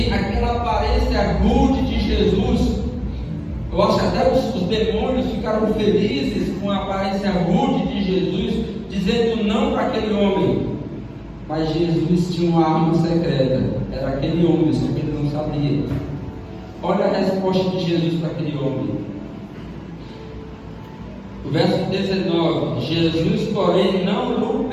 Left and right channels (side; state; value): both; identical; correlation 1.00